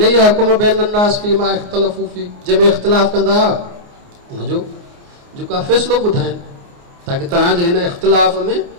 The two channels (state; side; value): late; left; 29 ms